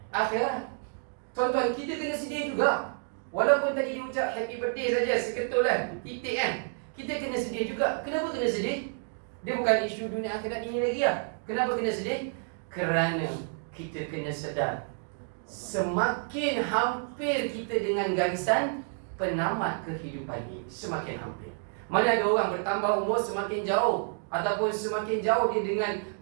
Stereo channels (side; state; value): left; silent; 58 dB below the other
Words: akhirat. Tuan-tuan, kita kena sedih juga. Walaupun tadi dia ucap happy birthday saja, seketul kan, titik kan, kita kena sedih juga. Kenapa kena sedih? Dia bukan isu dunia akhirat ini lagi lah. Kenapa kena sedih? Kerana kita kena sedar, semakin hampir kita dengan garisan penamat kehidupan ini, semakin hampir. Mana ada orang bertambah umur semakin jauh, ataupun semakin jauh dia dengan